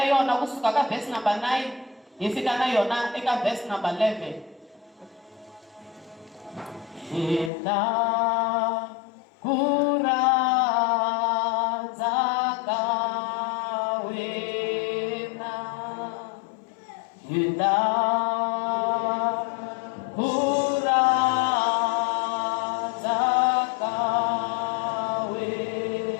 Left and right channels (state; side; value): drops out; right; at 7.5 s